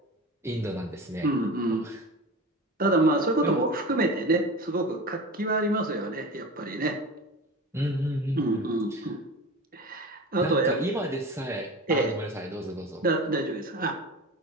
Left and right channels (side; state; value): both; normal; correlation 0.32